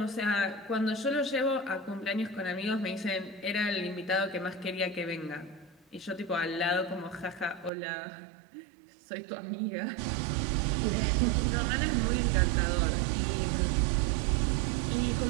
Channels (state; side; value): drops out; left; at 7.7 s